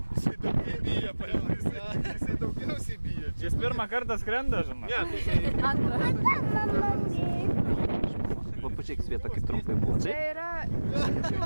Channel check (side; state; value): both; inverted; correlation -1.00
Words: Jisai daugiau bijo, paėmės. Jisai daugiausiai bijo. Jis pirmą kartą skrenda, žinai. Ne, tai jisai... Antrą. Va, pačiaik Sveta, kaip trumpai buvo. Čia Taip? yra...